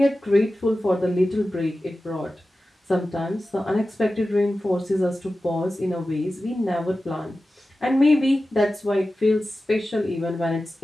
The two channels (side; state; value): both; normal; correlation 0.94